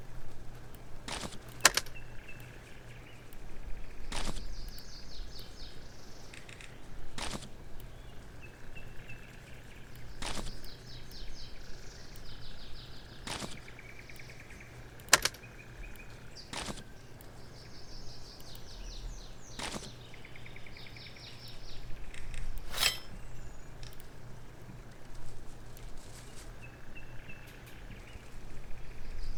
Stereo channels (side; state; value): both; identical; correlation 1.00